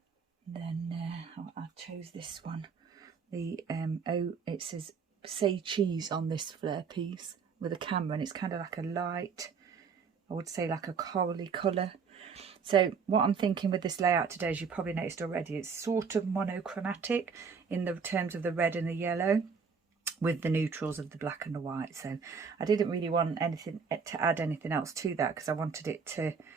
Then I chose this one, the it says say cheese on this Flair piece with a camera, and it's kind of like a light, I would say like a corally colour. So what I'm thinking with this layout today, as you probably noticed already, it's sort of monochromatic in the terms of the red and the yellow, with the neutrals of the black and the white. So I didn't really want anything to add anything else to that, because I wanted it to,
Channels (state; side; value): quieter; left; 5.8 dB